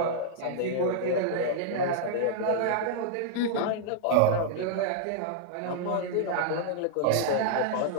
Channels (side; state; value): both; different; correlation -0.01